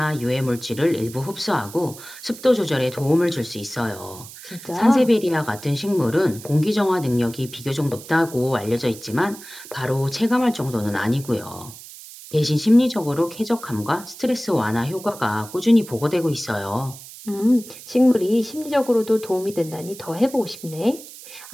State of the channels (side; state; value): right; noise; hiss, 16 dB below the sound